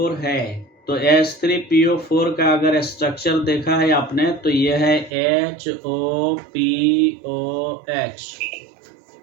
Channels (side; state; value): left; drops out; at 5.1 s